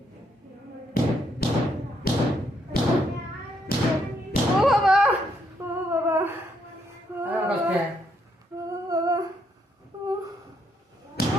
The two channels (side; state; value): both; normal; correlation 0.74